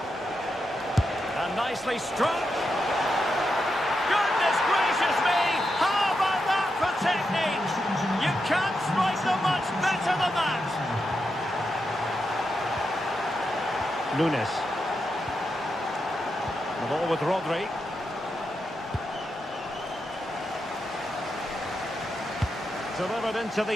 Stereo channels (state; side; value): normal; both; correlation 0.86